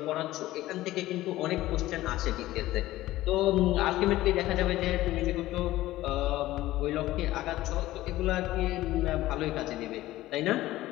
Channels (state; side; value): quieter; right; 16.1 dB